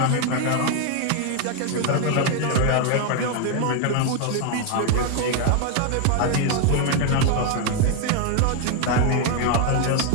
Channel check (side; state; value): both; different; correlation 0.00